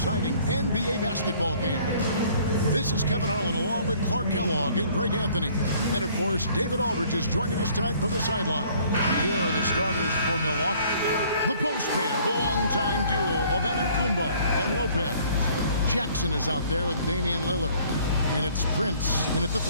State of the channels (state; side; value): inverted; both; correlation -0.57